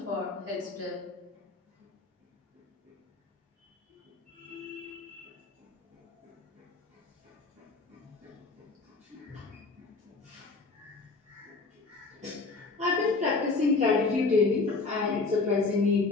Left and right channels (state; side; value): quieter; right; 3.9 dB